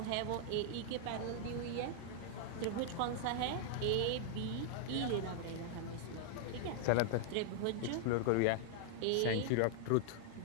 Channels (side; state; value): both; different; correlation 0.00